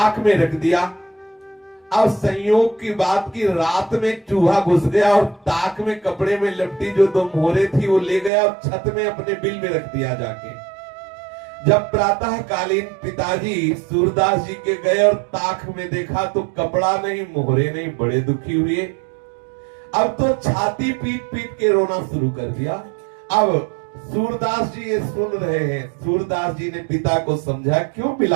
में रख दिया। अब संयोग की बात की रात में चूहा घुस गया और ताक में कपड़े में लपटी जो 2 मोहरें थी वो ले गया और छत में अपने बिल में रख दिया जाके। जब प्रातः कालीन पिताजी सूरदास जी के गए और ताक में देखा तो कपड़ा नहीं, मोहरे नहीं, बड़े दुखी हुए। अब तो छाती पीट पीट के रोना शुरू कर दिया। अब सूरदास जी ये सुन रहे हैं। सूरदास जी ने पिता को समझा, क्यों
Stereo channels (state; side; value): drops out; left; at 8.3 s